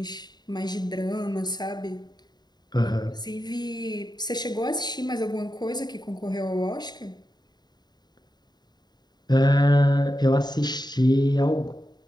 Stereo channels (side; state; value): right; late; 0.20 ms